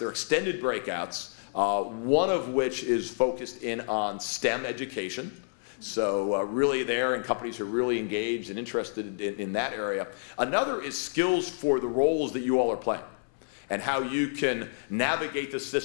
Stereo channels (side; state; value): right; silent; 59 dB below the other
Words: extended breakouts, one of which is focused in on STEM education. So really there, and companies are really engaged and interested in that area. Another is skills for the roles that you all are playing, and how you can navigate the